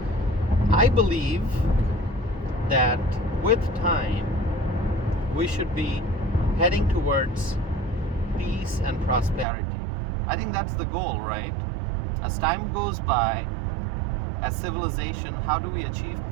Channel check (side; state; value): left; drops out; at 9.5 s